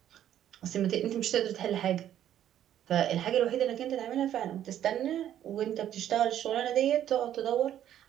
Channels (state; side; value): quieter; left; 11.0 dB